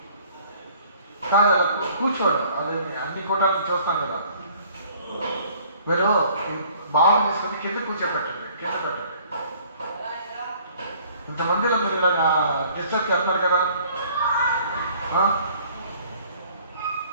కాదు అలా కూర్చోండి, అదే అన్ని కూటాలను చూస్తాం కదా. మీరు బాగా తీసుకొని కింద కూర్చోపెట్టండి, కింద పెట్టండి. ఇంతమందిలో మీరు ఇలా డిస్టర్బ్ చేస్తున్నారు కదా.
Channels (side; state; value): both; inverted; correlation -0.56